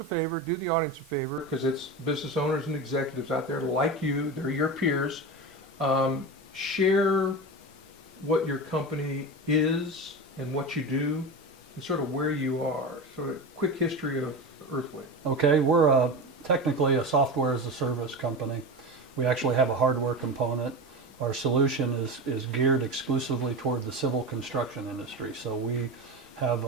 favor, do the audience a favor, because it's business owners and executives out there like you, they're your peers. Share what your company is and what you do and sort of where you are. Sort of quick history of Earthwave. Okay, we're technically a software as a service company. We actually have a hardware component. Our solution is geared exclusively toward the civil construction industry. So we have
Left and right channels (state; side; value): normal; both; correlation 0.24